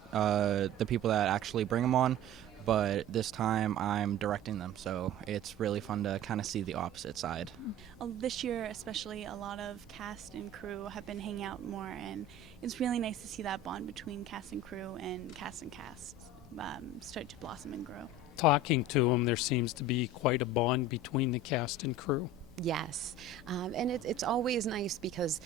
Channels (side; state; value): both; normal; correlation 0.37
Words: the people that actually bring them on, but this time I'm directing them, so it's really fun to kind of see the opposite side. This year especially, a lot of cast and crew have been hanging out more, and it's really nice to see that bond between cast and crew and cast start to blossom and grow. Talking to them, there seems to be quite a bond between the cast and crew. Yes, and it's always nice because